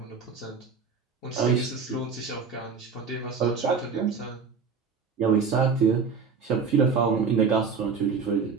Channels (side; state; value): left; quieter; 5.4 dB